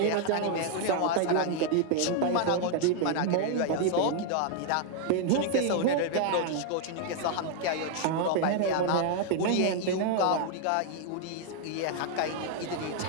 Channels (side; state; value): both; different; correlation 0.00